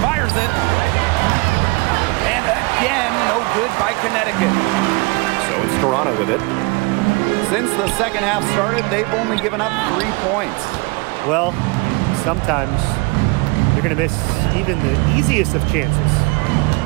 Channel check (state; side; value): quieter; left; 27.0 dB